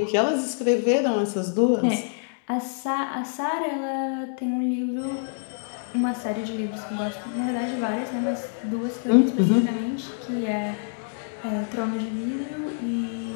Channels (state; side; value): silent; right; digital silence